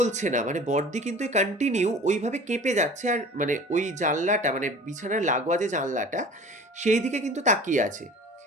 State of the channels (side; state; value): both; normal; correlation 0.42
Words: না। মানে বড়দি কিন্তু কন্টিনিউ ওইভাবে কেঁপে যাচ্ছে আর মানে ওই জানলাটা মানে বিছানার লাগোয়া যে জানলাটা, সেই দিকে কিন্তু তাকিয়ে আছে।